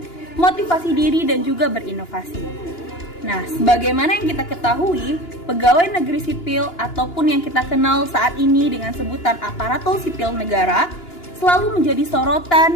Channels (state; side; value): late; right; 2.9 ms